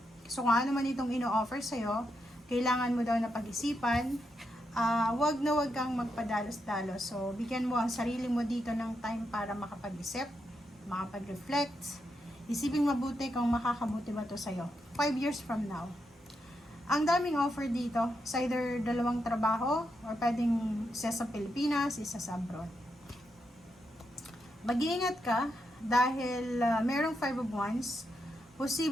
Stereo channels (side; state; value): both; normal; correlation 0.83